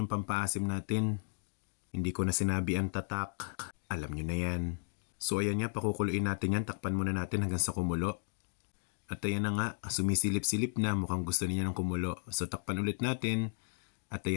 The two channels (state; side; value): silent; right; digital silence